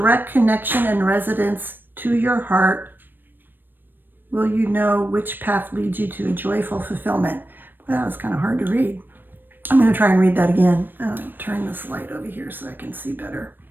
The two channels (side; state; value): left; late; 0.094 ms